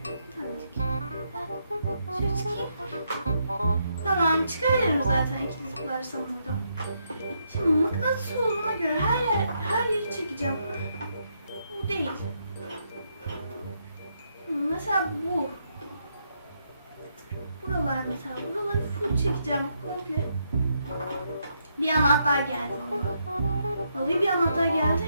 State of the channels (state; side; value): inverted; both; correlation -0.78